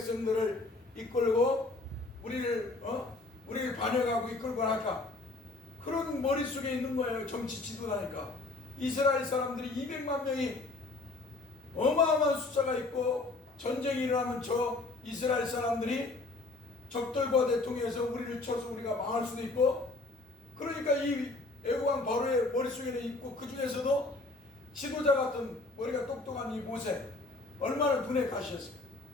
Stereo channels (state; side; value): quieter; right; 3.3 dB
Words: 이끌고 우리를 반역하고 이끌고 갈까? 그런 머릿속에 있는 거예요. 정치 지도자니까. 이스라엘 사람들이 200만 명이 어마어마한 숫자가 있고 전쟁이 일어나면 저 이스라엘 사람들이 적들과 대통해서 우리를 쳐서 우리가 망할 수도 있고 그러니까 이 애굽왕 바로의 머릿속에는 있고 그 중에서도 지도자 같은 머리가 똑똑한 이 모세 얼마나 눈에 가시였어요.